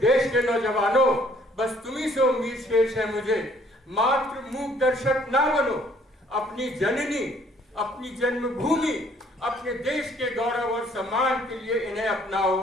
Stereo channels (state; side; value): normal; both; correlation 0.61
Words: के नौजवानों, बस तुम्ही से उम्मीद शेष है मुझे, मात्र मूक दर्शक ना बनो। अपनी जननी, अपनी जन्मभूमि, अपने देश के गौरव और सम्मान के लिए इन्हें अपनाओ।